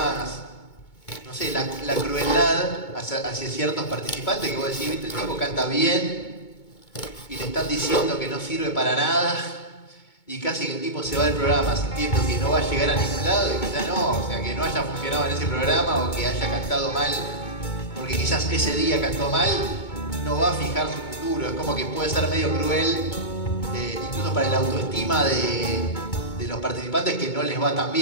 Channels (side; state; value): right; late; 2.2 ms